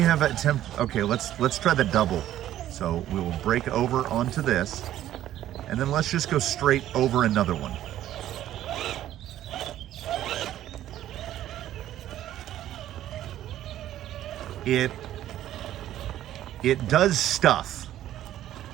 attempted, okay, let's try the double. So we will break over onto this, and then let's just go straight over another one. It does stuff,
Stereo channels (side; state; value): left; quieter; 12.6 dB